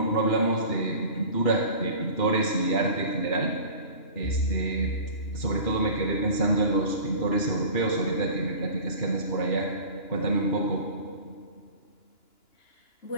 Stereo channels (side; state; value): right; late; 2.9 ms